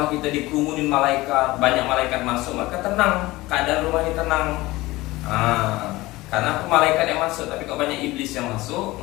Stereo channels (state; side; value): quieter; right; 19.5 dB